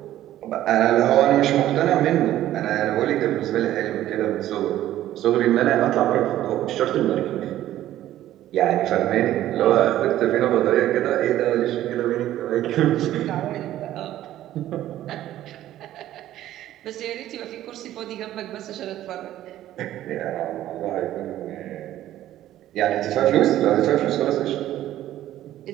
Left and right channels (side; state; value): left; quieter; 13.3 dB